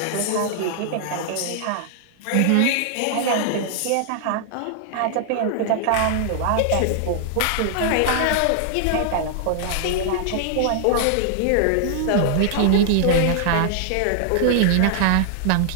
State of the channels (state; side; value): different; both; correlation -0.01